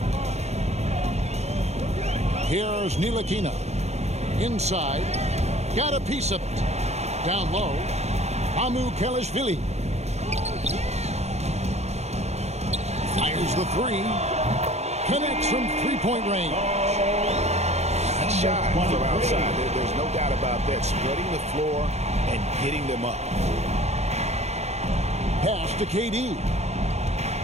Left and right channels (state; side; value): late; left; 0.32 ms